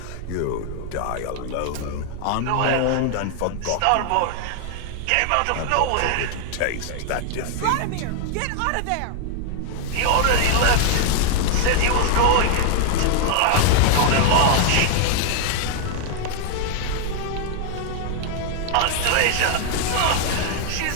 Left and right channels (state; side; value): different; both; correlation 0.00